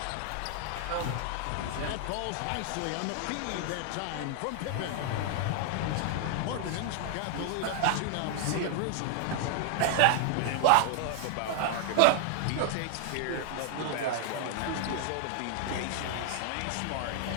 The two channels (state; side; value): different; both; correlation 0.00